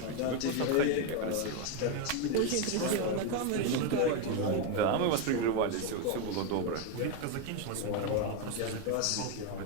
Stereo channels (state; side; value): different; both; correlation 0.02